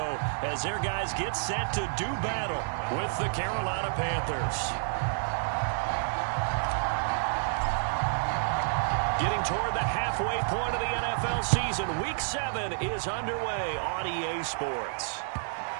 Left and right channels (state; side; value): silent; left; 58 dB below the other